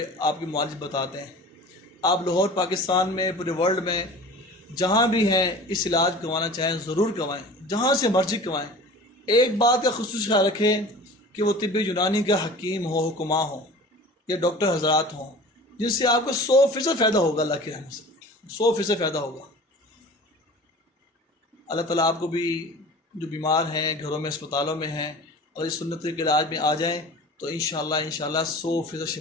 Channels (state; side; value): normal; both; correlation 0.40